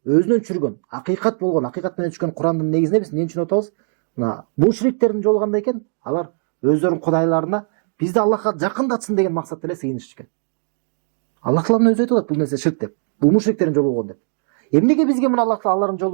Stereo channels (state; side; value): silent; left; 60 dB below the other